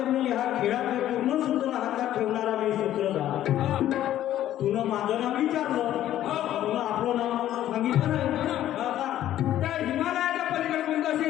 मी ह्या खेळाचे पूर्ण सूत्र हातात ठेवणारा मी सूत्रधार. हा तुला माझं नाव विचारलं, तुला आपलं नाव सांगितलं नाही. हा का? त्या हिमालयाच्या पलीकडे कोणतं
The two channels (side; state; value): right; quieter; 12.5 dB